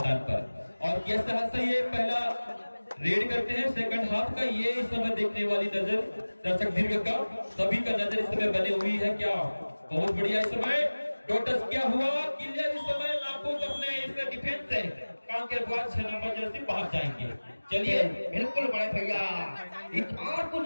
पर। और किस तरह से ये पहला रेड करते हैं सेकंड हाफ का, ये इस समय देखने वाली नजर दर्शक दीर्घ का सभी का नजर इस समय बनी हुई है। क्या बहुत बढ़िया इस समय टोटस क्या हुआ, क्लियर इस समय नापूस अपने इस डिफेंस से कांकेर बॉयज 6 नंबर जर्सी बाहर जाएंगे। चलिए बिल्कुल बड़े भैया, इस बार कुछ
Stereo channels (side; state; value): both; inverted; correlation -1.00